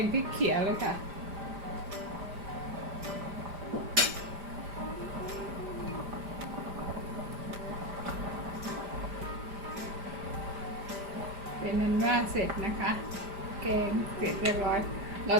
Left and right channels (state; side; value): late; left; 5.0 ms